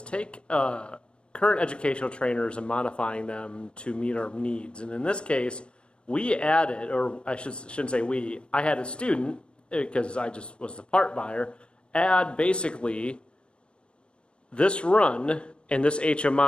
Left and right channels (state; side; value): late; right; 0.055 ms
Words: take current educational trainers and modifying them to meet our needs. And in this case, we added, or I shouldn't say we, I had a student, because I just was the part buyer, add basically this run and this